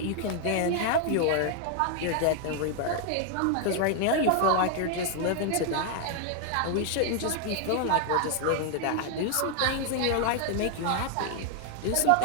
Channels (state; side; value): different; both; correlation 0.00